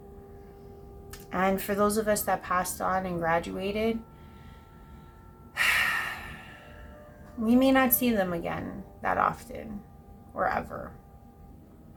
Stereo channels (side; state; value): both; identical; correlation 1.00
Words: And for those of us that passed on and graduated, we may not see them again that often or ever.